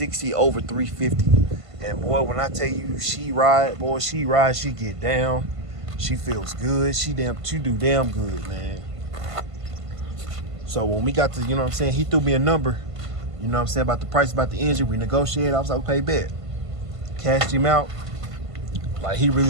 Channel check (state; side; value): late; left; 1.5 ms